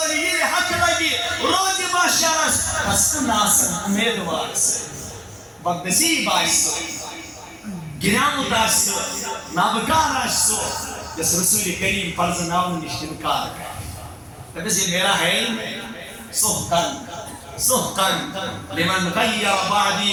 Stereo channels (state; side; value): identical; both; correlation 1.00